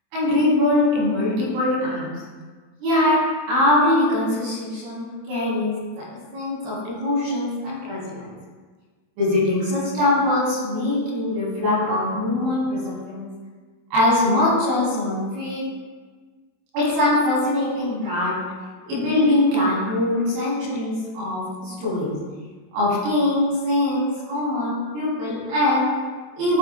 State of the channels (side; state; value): left; late; 27 ms